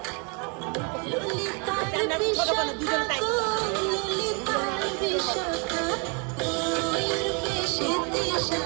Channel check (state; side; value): quieter; left; 34.8 dB